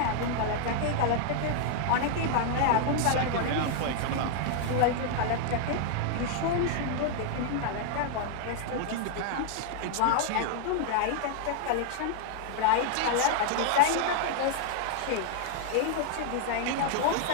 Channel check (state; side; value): different; both; correlation 0.00